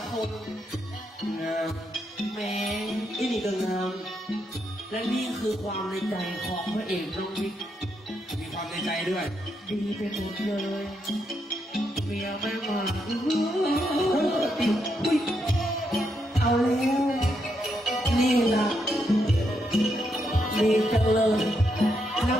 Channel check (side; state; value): both; normal; correlation 0.80